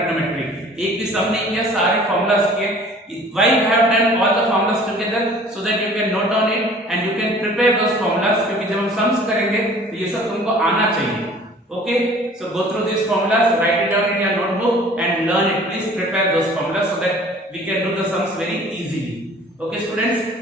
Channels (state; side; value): normal; both; correlation 0.50